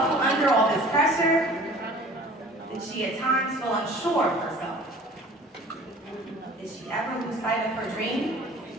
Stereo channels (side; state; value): both; normal; correlation 0.47